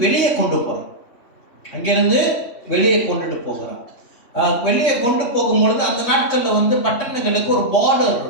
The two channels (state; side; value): late; right; 3.2 ms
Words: வெளியே கொண்டு போறார். அங்கிருந்து வெளியே கொண்டுட்டு போகிறார். வெளியே கொண்டு போகும்பொழுது அந்த நாட்களில் பட்டணங்களுக்கு ஒரு பார்டர்